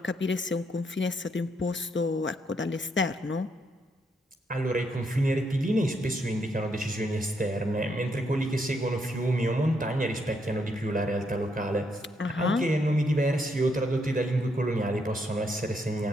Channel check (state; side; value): normal; both; correlation 0.76